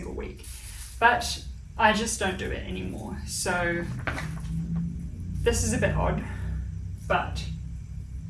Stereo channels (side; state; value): both; identical; correlation 1.00